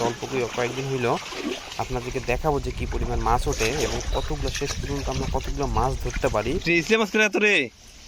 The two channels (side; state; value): both; identical; correlation 1.00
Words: অল্প কয়েকদিন হইলেও আপনাদেরকে দেখাবো যে কি পরিমাণ মাছ ওঠে এবং কতগুলো শেষ পর্যন্ত আমরা কতগুলো মাছ ধরতে পারি।